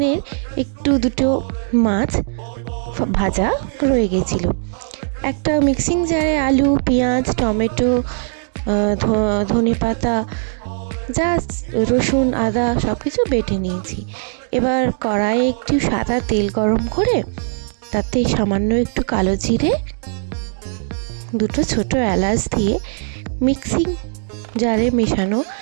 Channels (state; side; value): silent; left; digital silence